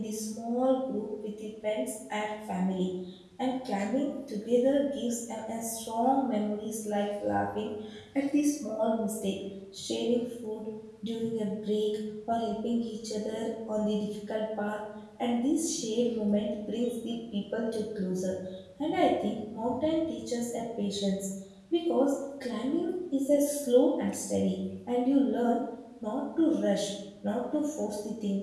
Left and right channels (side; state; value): both; identical; correlation 1.00